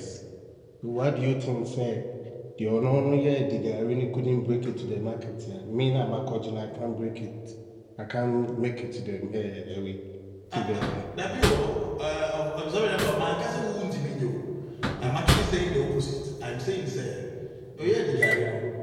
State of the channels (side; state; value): both; identical; correlation 1.00